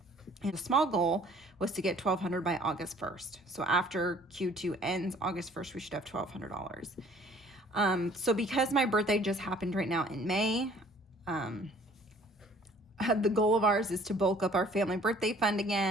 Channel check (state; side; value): normal; both; correlation 0.55